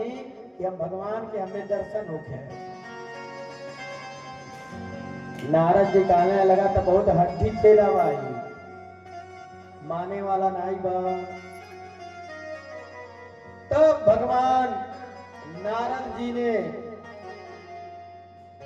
कि हम भगवान के हमें दर्शन होके। नारद जी कहने लगा तो बहुत हड्डी चेला भाई, माने वाला नाई बा। तब भगवान नारद जी ने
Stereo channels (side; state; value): both; identical; correlation 1.00